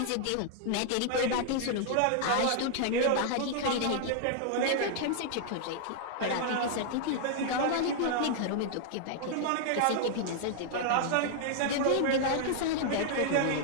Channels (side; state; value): both; different; correlation -0.01